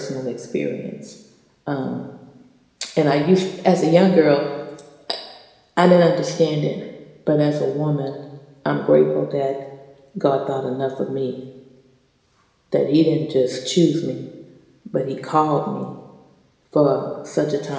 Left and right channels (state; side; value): identical; both; correlation 1.00